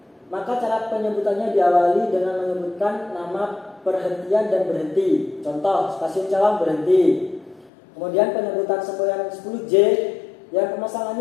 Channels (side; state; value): right; drops out; at 7.7 s